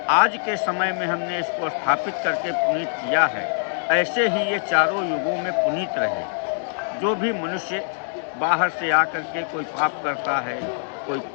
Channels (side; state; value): right; silent; digital silence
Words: आज के समय में हमने इसको स्थापित करके पुनीत किया है, ऐसे ही ये चारों युगों में पुनीत रहे। जो भी मनुष्य बाहर से आकर के कोई पाप करता है, कोई